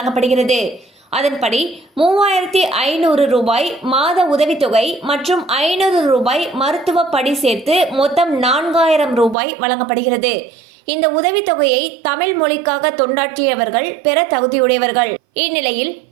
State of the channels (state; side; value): drops out; left; at 9.3 s